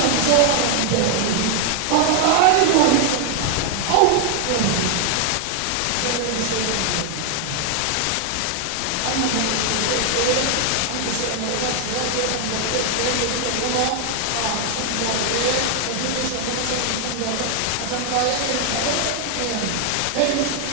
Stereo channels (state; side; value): different; both; correlation 0.00